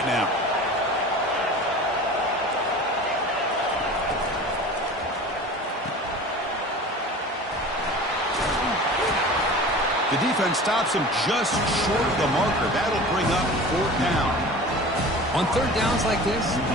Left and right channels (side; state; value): both; normal; correlation 0.38